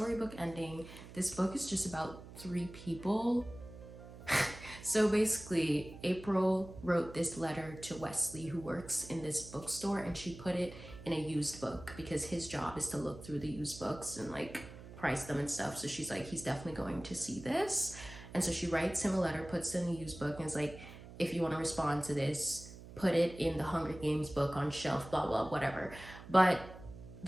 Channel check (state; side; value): noise; right; hum, 15 dB below the sound